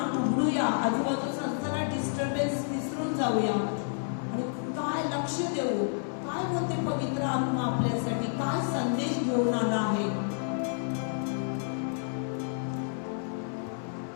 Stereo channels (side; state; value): right; silent; 58 dB below the other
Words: उघडूया, आजूबाजूचा सगळा डिस्टर्बन्स विसरून जाऊया आणि काय लक्ष देऊ, काय बोलते पवित्र आत्मा आपल्यासाठी, काय संदेश घेऊन आला आहे.